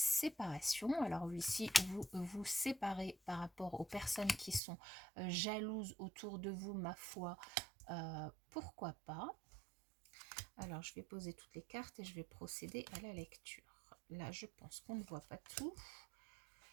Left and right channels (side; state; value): left; drops out; at 4.6 s